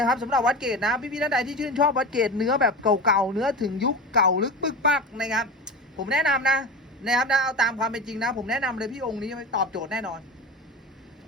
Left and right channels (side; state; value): both; normal; correlation 0.27